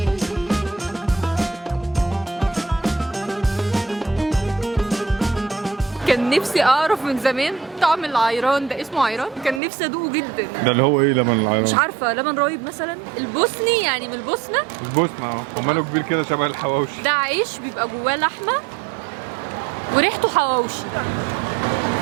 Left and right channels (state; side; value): drops out; left; at 9.6 s